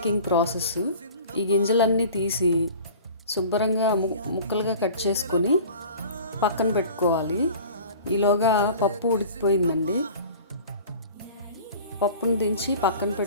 ప్రాసెస్. ఈ గింజలన్నీ తీసి శుభ్రంగా ముక్కలుగా కట్ చేసుకొని పక్కన పెట్టుకోవాలి. ఈలోగా పప్పు ఉడికిపోయిందండి. పప్పును దించి పక్కన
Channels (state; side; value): inverted; both; correlation -0.43